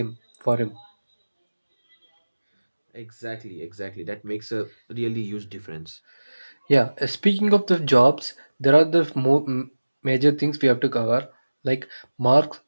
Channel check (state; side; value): inverted; both; correlation -1.00